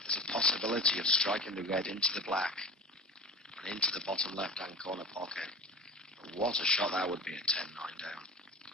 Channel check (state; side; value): normal; both; correlation 0.33